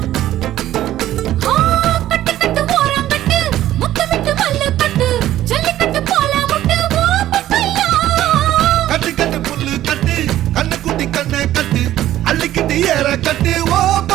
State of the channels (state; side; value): quieter; left; 13.4 dB